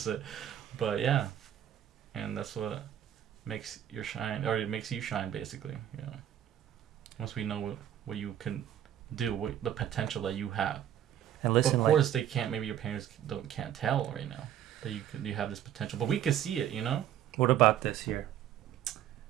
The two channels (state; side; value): quieter; left; 10.7 dB